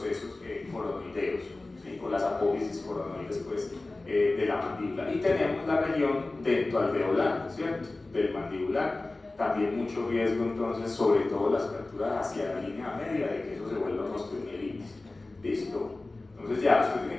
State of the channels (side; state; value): right; quieter; 3.1 dB